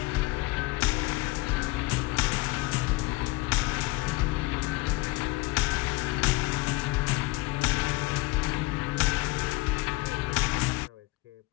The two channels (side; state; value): right; quieter; 21.0 dB